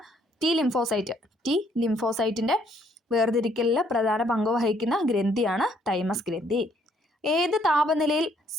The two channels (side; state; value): both; normal; correlation 0.67